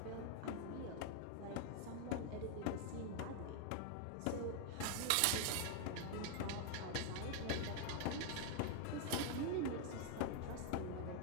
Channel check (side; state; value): both; different; correlation 0.00